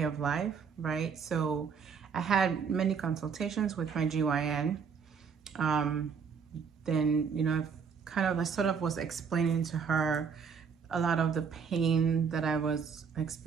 of life, right? So I had many consultations with my GYN. Then, I sort of was explaining to her a lot of the pain that I was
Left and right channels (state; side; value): quieter; left; 6.3 dB